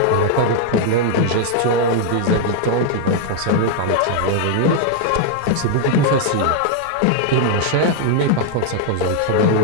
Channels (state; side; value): different; both; correlation 0.00